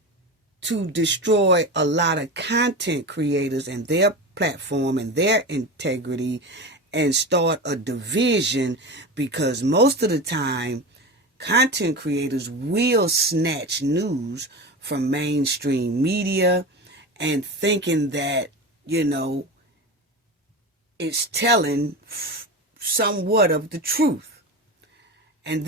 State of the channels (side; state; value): both; normal; correlation 0.25